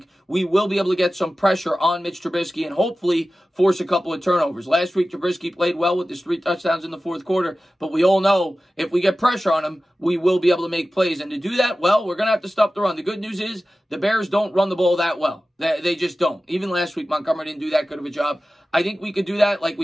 we will be able to get some pressure on Mitch Trubisky and hopefully force a couple of turnovers. Last week, Trubisky played well with his 3 touchdowns in the fourth quarter, but we all know if we get pressure on him, we will be able to make plays. And to do that, well, we're going to have to stop the run. The good news is the Bears don't run the ball that well. They just don't. Even last week, Montgomery didn't do that good of a job. I think we could do that like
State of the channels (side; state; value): both; normal; correlation 0.95